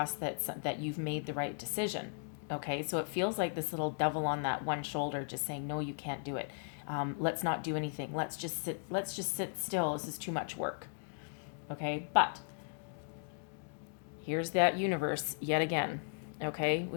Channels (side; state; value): right; silent; digital silence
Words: that you've made the right decision, okay? So it feels like this little devil on that one shoulder just saying, no, you can't do it. Let's not do anything. Let's just sit still. This is too much work, okay? But here's that universe yet again, okay?